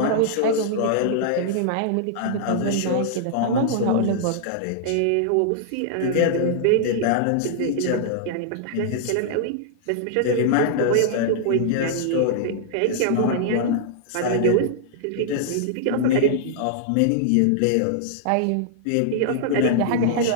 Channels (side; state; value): both; different; correlation -0.01